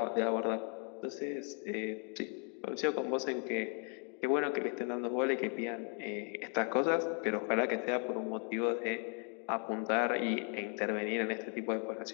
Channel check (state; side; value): quieter; right; 38.4 dB